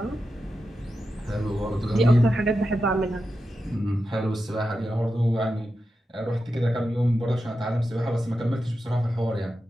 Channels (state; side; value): normal; both; correlation 0.89